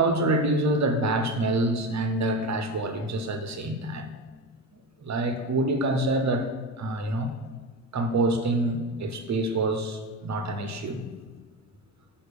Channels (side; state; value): both; normal; correlation 0.21